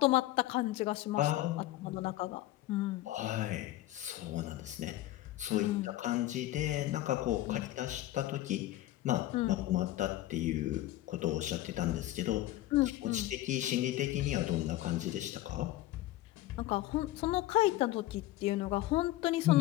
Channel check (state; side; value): quieter; right; 15.6 dB